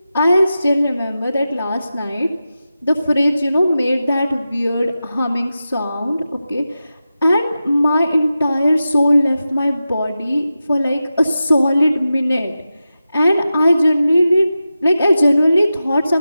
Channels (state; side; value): inverted; both; correlation -0.92